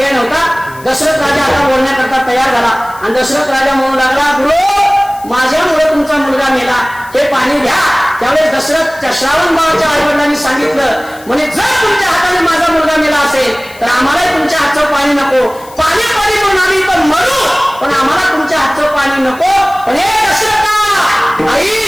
नव्हता. दशरथ राजा आता बोलण्याकरता तयार झाला आणि दशरथ राजा म्हणू लागला, गुरु माझ्यामुळे तुमचा मुलगा मेला, हे पाणी घ्या. त्यावेळेस दशरथ श्रावण बाळाच्या आईवडिलांनी सांगितलं, म्हणे जर तुमच्या हाताने माझा मुलगा मेला असेल तर आम्हालाही तुमच्या हातचं पाणी नको. पाणी पाणी म्हणून आम्ही पण मरू, पण आम्हाला तुमच्या हातचं पाणी नको. पण हे दशरथा आई,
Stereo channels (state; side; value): noise; left; hiss, 22 dB below the sound